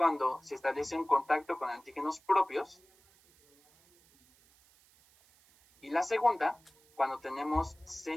se establece un contacto con antígenos propios, y la segunda, cuando tenemos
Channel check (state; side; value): noise; right; hiss, 30 dB below the sound